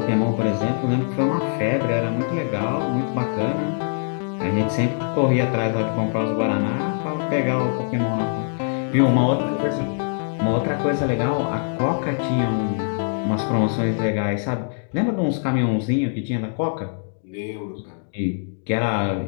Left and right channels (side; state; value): right; silent; digital silence